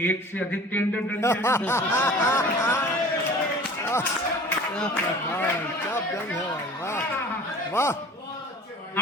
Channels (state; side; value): normal; both; correlation 0.43